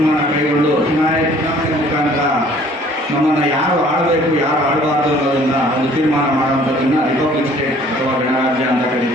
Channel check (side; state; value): both; normal; correlation 0.55